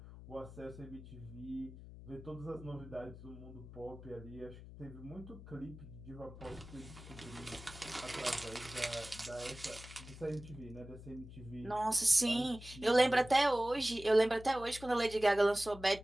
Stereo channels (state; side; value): noise; left; hum, 15 dB below the sound